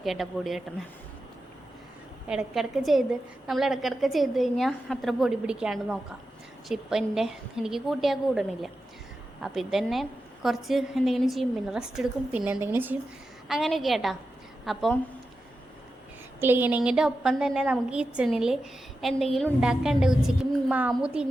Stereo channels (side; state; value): both; normal; correlation 0.91